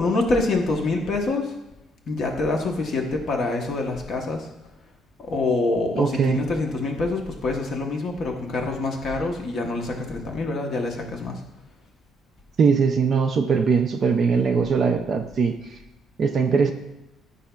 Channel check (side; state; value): both; normal; correlation 0.71